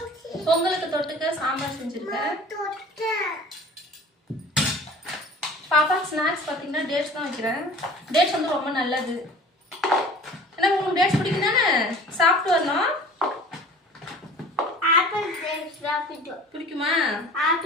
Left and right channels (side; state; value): both; normal; correlation 0.44